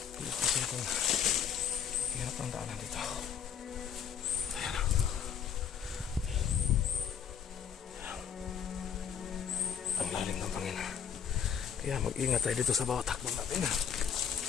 Kasi kung hirap ang daanan dito. Ayan o. Ang lalim ng pangin. Kaya mag-ingat tayo dito sa bawat hakbang natin.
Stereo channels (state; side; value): quieter; right; 7.8 dB